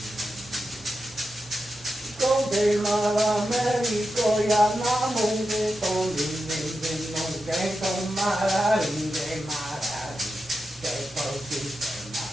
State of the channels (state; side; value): normal; both; correlation 0.89